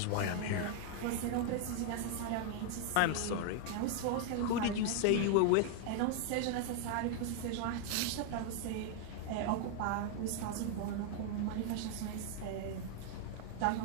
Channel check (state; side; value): different; both; correlation 0.00